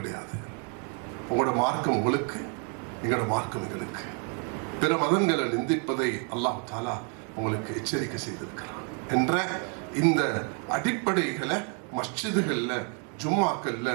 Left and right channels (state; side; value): quieter; left; 39.4 dB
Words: உங்களோட மார்க்கம் உங்களுக்கு, எங்களோட மார்க்கம் எங்களுக்கு. பிற மதங்களை நிந்திப்பதை அல்லாஹ் தாலா உங்களுக்கு எச்சரிக்கை செய்திருக்கிறான் என்ற இந்த அடிப்படைகளை மஸ்ஜிதுகள்ல, ஜும்மாக்கள்ல